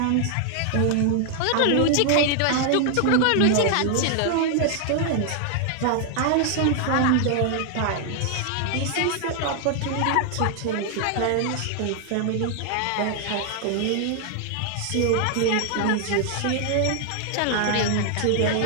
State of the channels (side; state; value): both; different; correlation 0.00